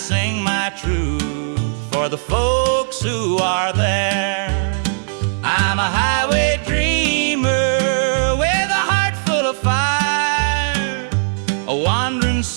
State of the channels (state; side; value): silent; left; 67 dB below the other